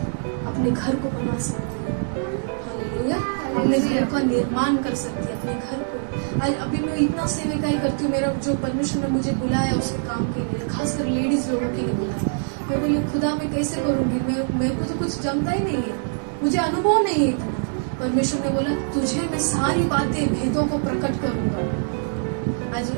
अपने घर को बना सकती है। हालेलुया। अपने घर का निर्माण कर सकती है, अपने घर को। आज अभी मैं इतना सेविकाई करती हूँ, मेरा जो परमेश्वर ने मुझे बुलाया उसके काम के लिए, खासकर लेडीज लोगों के लिए बुलाया। मैं बोली खुदा मैं कैसे करूंगी, मेरे को तो कुछ जमता ही नहीं है, मुझे अनुभव नहीं है इतना। परमेश्वर ने बोला तुझे मैं सारी बातें, भेदों को प्रकट करूंगा। आज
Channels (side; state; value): left; silent; digital silence